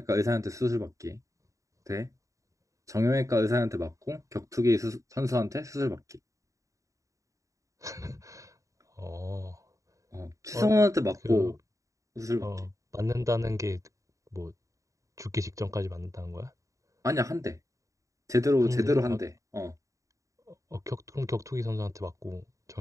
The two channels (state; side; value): late; left; 0.16 ms